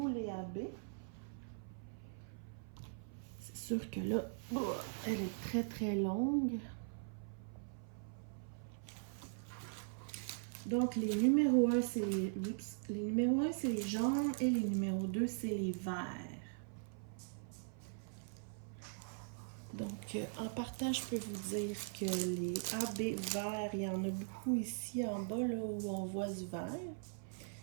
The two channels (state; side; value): silent; left; 50 dB below the other